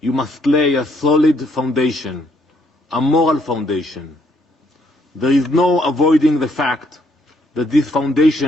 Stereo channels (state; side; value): normal; both; correlation 0.70